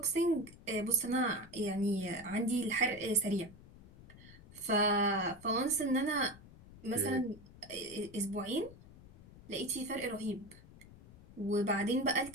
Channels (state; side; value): noise; left; rumble, 20 dB below the sound